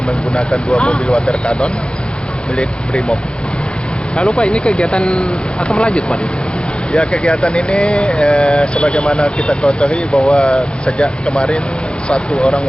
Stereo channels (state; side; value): late; right; 0.054 ms